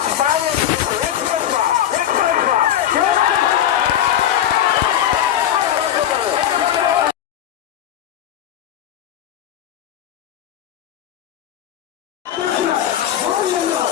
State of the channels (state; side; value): quieter; right; 11.0 dB